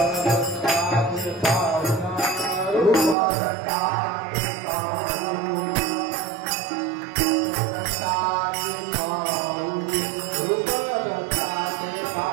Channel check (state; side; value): drops out; left; at 3.2 s